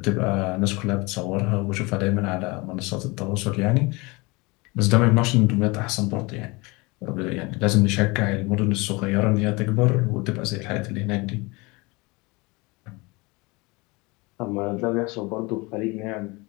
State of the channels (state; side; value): quieter; right; 25.4 dB